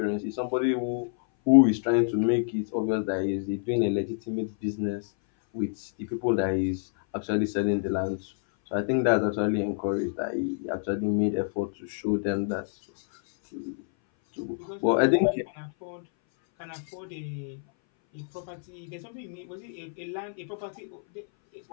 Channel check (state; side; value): silent; right; 58 dB below the other